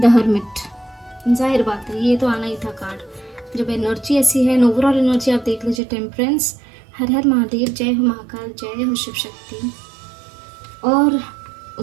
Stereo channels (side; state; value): left; drops out; at 5.8 s